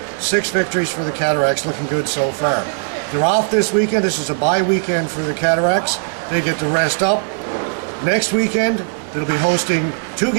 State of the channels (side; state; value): left; silent; 55 dB below the other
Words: 6 victories for the Cataracts, looking good so far. They're off this weekend. This is a bye weekend for the Cataracts. They get to rest up. Next weekend, they'll be hosting 2